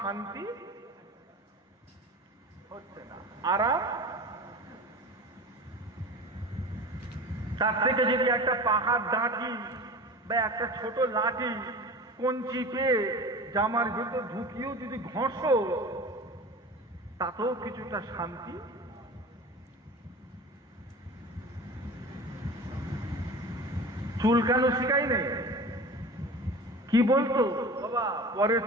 হচ্ছে না, আরাম। তার থেকে যদি একটা পাহাড় ডাঁটি বা একটা ছোট লাঠি কঞ্চি পেয়ে জামার ভিতর ঢুকিয়েও যদি ঘষো, তাতেও কিছুটা শান্তি। চুলকানো শিখাই নেই, কি বলতো বাবা, পরের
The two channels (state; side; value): normal; both; correlation 0.35